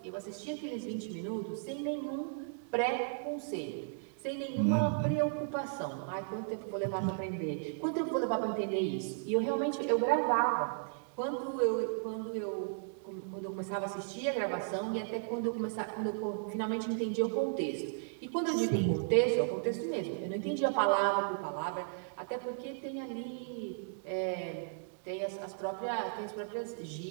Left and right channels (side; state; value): left; silent; digital silence